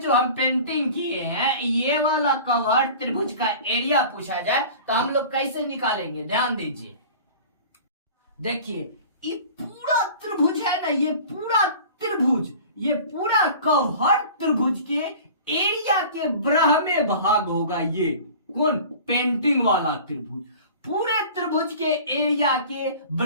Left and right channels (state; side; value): inverted; both; correlation -0.41